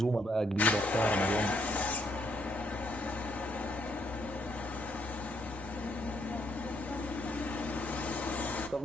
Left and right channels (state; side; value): normal; both; correlation 0.73